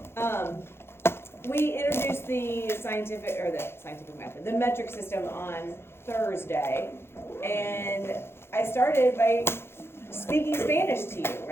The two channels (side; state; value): right; late; 0.12 ms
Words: We introduced the scientific method, the metric system on Thursday, and I started by speaking Spanish to you,